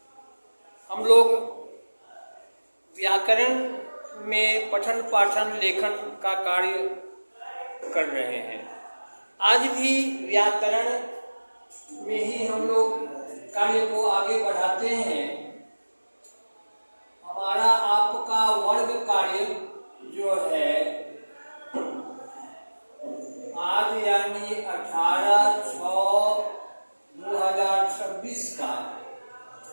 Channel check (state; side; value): inverted; both; correlation -1.00